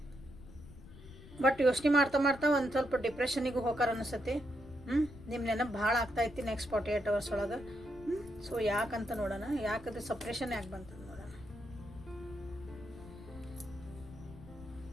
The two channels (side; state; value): left; noise; rumble, 17 dB below the sound